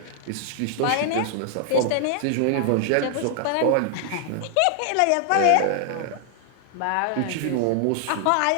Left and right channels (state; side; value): different; both; correlation 0.00